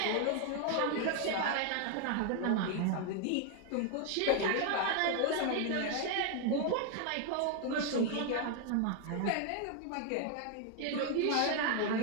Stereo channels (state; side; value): different; both; correlation 0.01